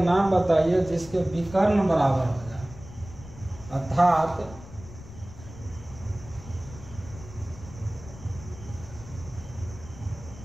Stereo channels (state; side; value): noise; left; rumble, 16 dB below the sound